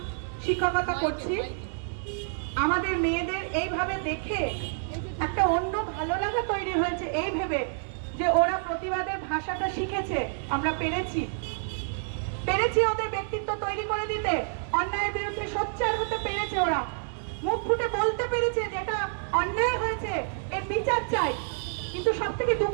শিক্ষকতা করছি। আমাদের মেয়েদের এইভাবে দেখে একটা অন্য ভালো লাগা তৈরি হয়েছে, এই ভেবে যে ওরা প্রতিবাদের ভাষাটা শিখেছে, আমরা পেরেছি ওদের ব্যক্তিত্ব তৈরি করে দিতে, অন্যায়ের বিরুদ্ধে সোচ্চার হতে পেরেছে, ওরা মুখ ফুটে বলতে পেরেছে যেটা অন্যায় হয়েছে এর বিচার চাই। কিন্তু সব থেকে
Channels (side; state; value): left; silent; 59 dB below the other